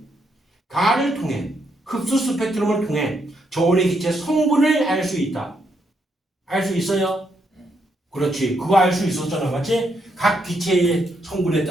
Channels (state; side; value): normal; both; correlation 0.77